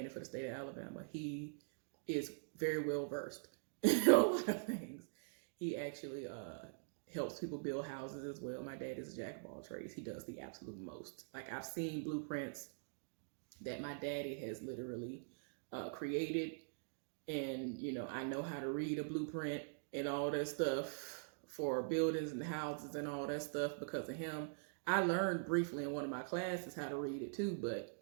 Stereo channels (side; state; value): left; silent; digital silence